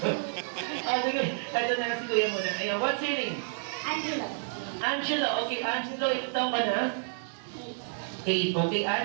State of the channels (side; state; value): left; silent; digital silence